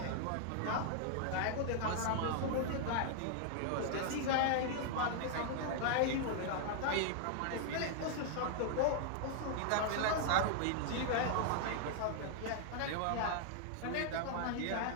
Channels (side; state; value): both; different; correlation 0.00